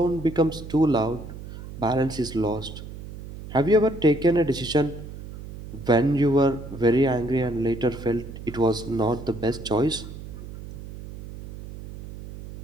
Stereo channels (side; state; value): right; noise; hum, 12 dB below the sound